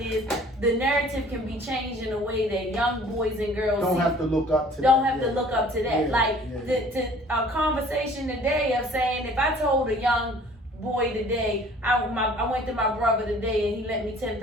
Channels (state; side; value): normal; both; correlation 0.51